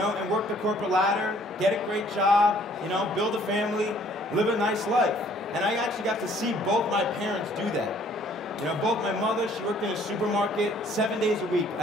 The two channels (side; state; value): both; normal; correlation 0.59